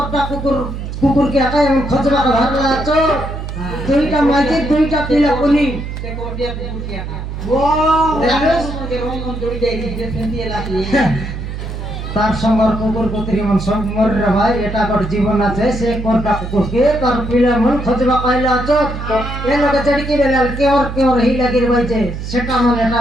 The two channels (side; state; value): right; noise; hum, 7 dB below the sound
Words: कुकुर के आका हम खजबा का भरला चो दुईटा माइके दुईटा पिला पुनी से कोटिया कुकुर के आका वो देखलुस के रोम जोड़ी जाई जे सेंती लाती তার সঙ্গর কুকুর কুতরি মন সব মর রে ভাই এটা কর জীবন আছে সে কোনটা কুকুর কে তার পিলা মন খজবা কইলা চোখ এ লগে চড়কি বেলাল কে ওর হি লাগি রে ভাইছে সেটা মন এটা